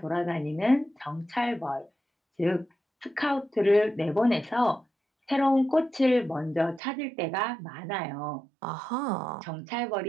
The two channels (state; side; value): drops out; left; at 6.8 s